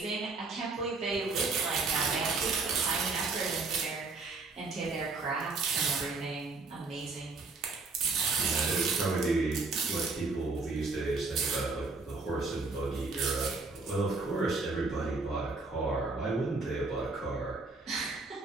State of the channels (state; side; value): quieter; left; 3.8 dB